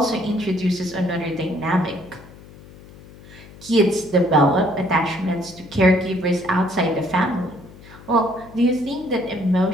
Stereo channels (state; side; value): noise; left; hum, 20 dB below the sound